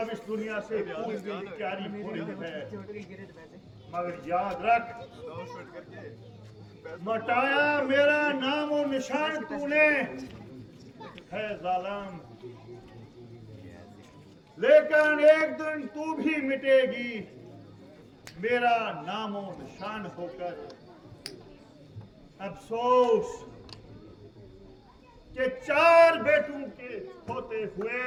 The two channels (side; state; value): both; identical; correlation 1.00